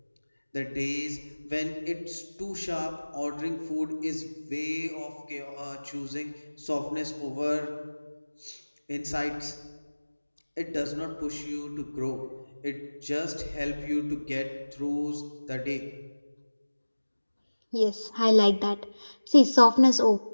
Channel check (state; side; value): inverted; both; correlation -1.00